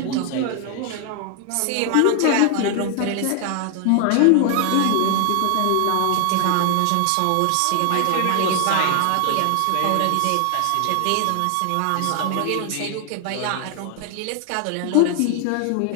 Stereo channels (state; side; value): different; both; correlation 0.00